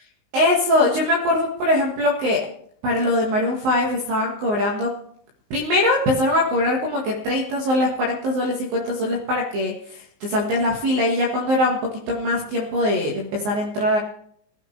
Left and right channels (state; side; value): late; left; 19 ms